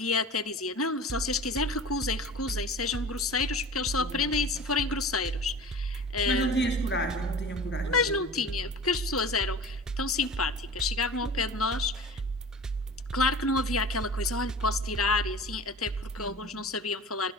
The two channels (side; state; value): both; normal; correlation 0.38